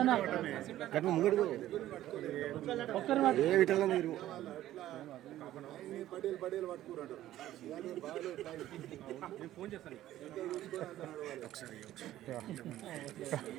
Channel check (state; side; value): quieter; left; 13.7 dB